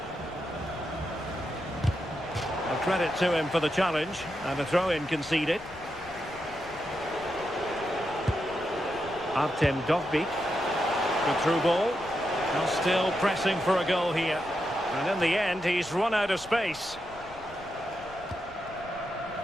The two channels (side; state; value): left; noise; rumble, 21 dB below the sound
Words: Credit to him for the challenge, and a throw-in conceded. Artem Dovbik. Good through ball. Now still pressing for a goal here. And in the end, he's run out of space.